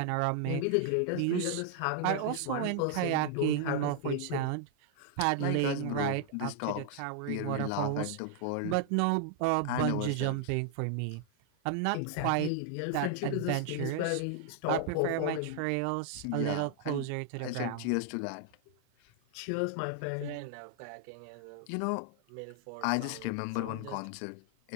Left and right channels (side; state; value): both; different; correlation 0.00